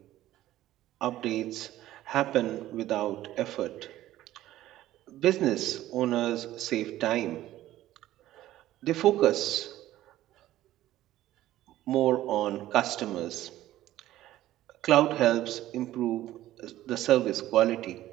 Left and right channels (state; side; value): quieter; left; 14.4 dB